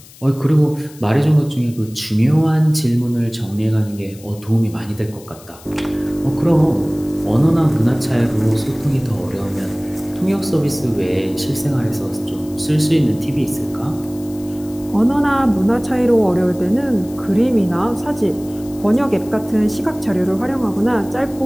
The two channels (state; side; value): noise; left; hiss, 22 dB below the sound